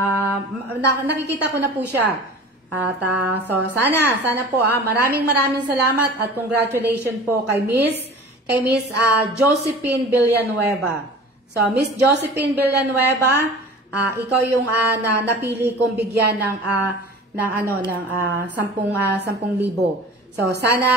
Nakikita ko na po siya. At so sana po maraming salamat at congratulations po kay Miss Josephine Villanueva. So Miss Josephine Villanueva, ikaw yung napili kong bigyan ng 10,000. So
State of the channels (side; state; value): both; normal; correlation 0.40